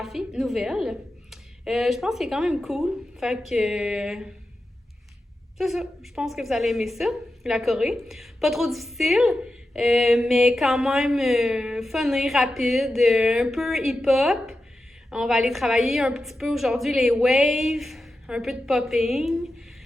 nouvelle. Je pense que c'est quand même cool, fait que... c'est ça, je pense que vous allez aimer ça, la choré. Pas trop difficile, mais quand même funny, rapide, un peu hip-hop. On va aller travailler un petit peu aujourd'hui les waves, un peu de popping.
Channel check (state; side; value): normal; both; correlation 0.91